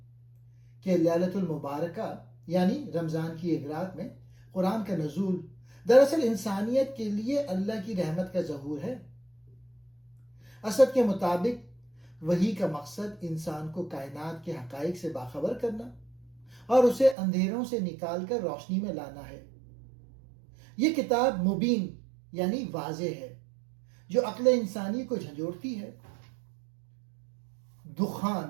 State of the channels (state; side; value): drops out; left; at 17.2 s